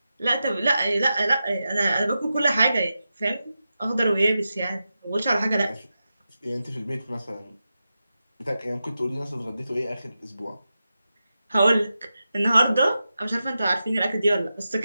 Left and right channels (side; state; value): both; inverted; correlation -0.91